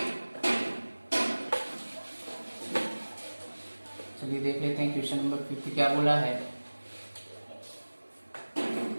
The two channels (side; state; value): both; inverted; correlation -1.00